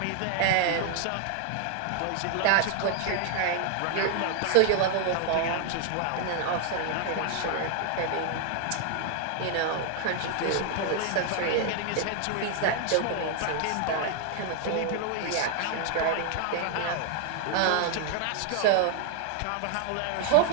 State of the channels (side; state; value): both; different; correlation 0.00